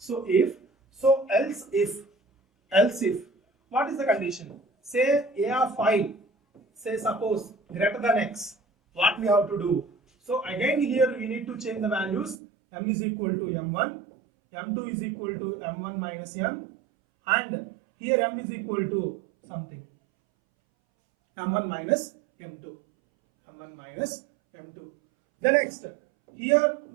if, so else if. What is the condition? Say A of I, say suppose greater than X. What we have to do? So again here we need to change the values. M is equal to M1, M2 is equal to M1 minus M, and here M is equal to something. M1 minus M2. M1 minus M2. The next, here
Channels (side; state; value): left; drops out; at 12.4 s